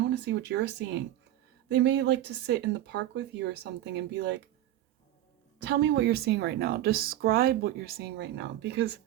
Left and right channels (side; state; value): left; quieter; 13.2 dB